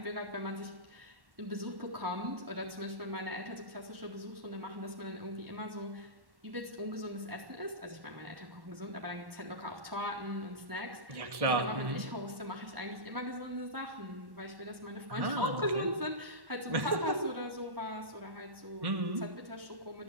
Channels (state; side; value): late; left; 1.1 ms